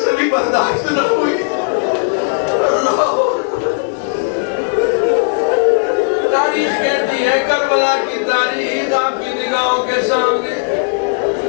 سے بھی برداشت نہ ہوئی. تاریخ کہتی ہے, کربلا کی تاریخ آپ کی نگاہوں کے سامنے.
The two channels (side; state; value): right; silent; digital silence